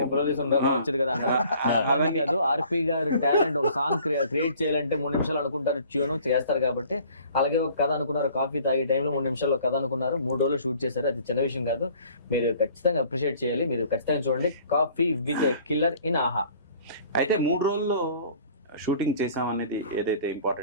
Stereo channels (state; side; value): inverted; both; correlation -0.53